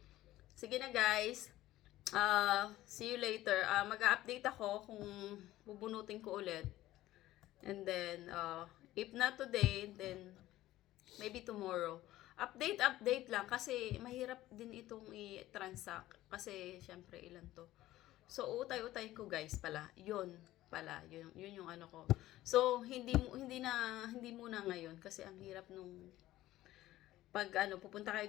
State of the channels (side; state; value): right; quieter; 15.5 dB